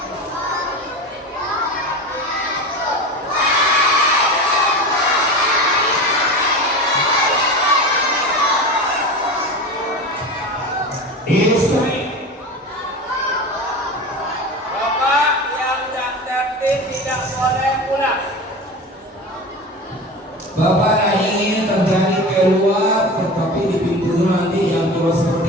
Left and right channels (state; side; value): normal; both; correlation 0.29